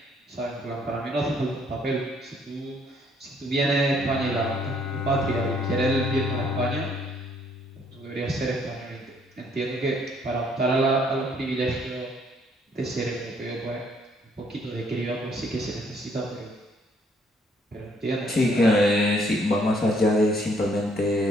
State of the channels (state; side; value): normal; both; correlation 0.66